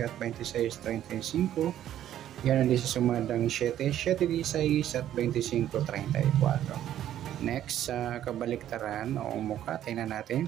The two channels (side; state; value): left; quieter; 11.6 dB